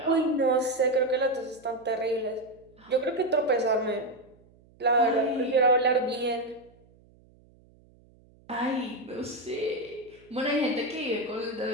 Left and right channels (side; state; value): right; noise; hum, 29 dB below the sound